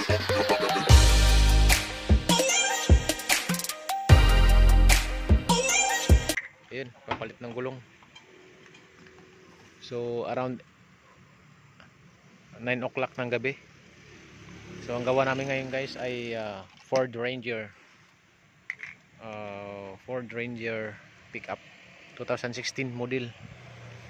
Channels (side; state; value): both; identical; correlation 1.00